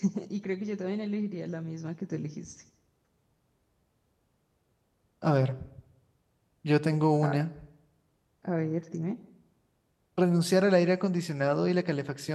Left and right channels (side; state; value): both; identical; correlation 1.00